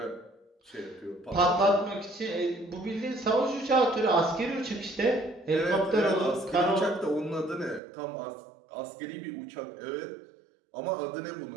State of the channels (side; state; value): left; drops out; at 7.8 s